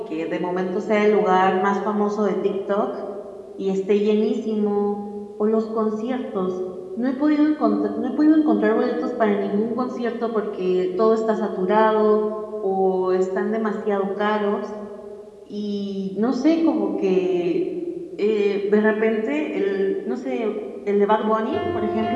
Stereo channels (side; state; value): both; identical; correlation 1.00